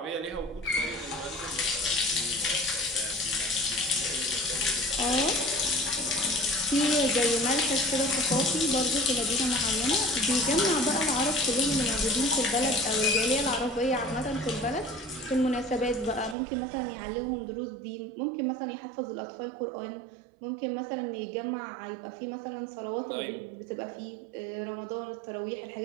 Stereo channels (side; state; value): left; drops out; at 16.4 s